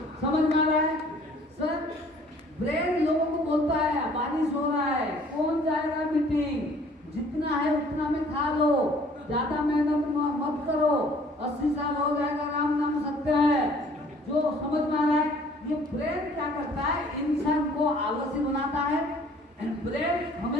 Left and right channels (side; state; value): both; normal; correlation 0.56